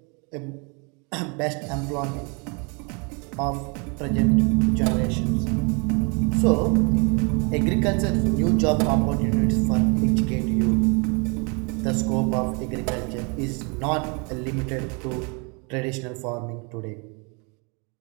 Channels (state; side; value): quieter; left; 32.9 dB